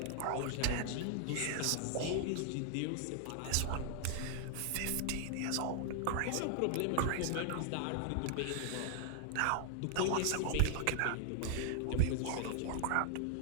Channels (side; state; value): both; different; correlation 0.00